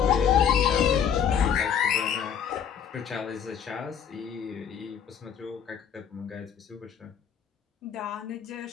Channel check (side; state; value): right; quieter; 8.1 dB